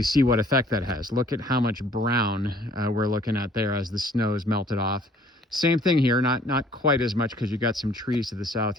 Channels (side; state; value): both; normal; correlation 0.57